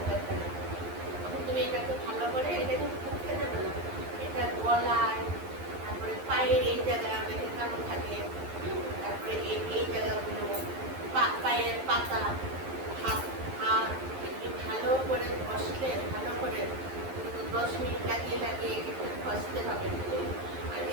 টাকা। তখন তুমি এটাকে ভালো করে, এটা কিন্তু মুখে দেবে না, এটা গলায়, তারপরে পায়ের এই জায়গায় অনেকের কালো থাকে, তারপরে এই জায়গাগুলো, পায়ের পাতা, হাত হাত এগুলি ভালো করে ঘষলে, ভালো করে 10 মিনিট লাগিয়ে লাগিয়ে একটু ঘষতে হবে। আর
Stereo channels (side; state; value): left; late; 11 ms